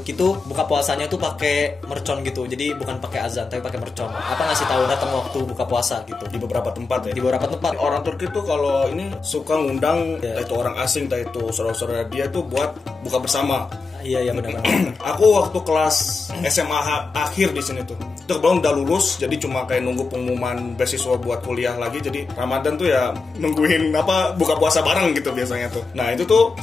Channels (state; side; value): quieter; right; 4.2 dB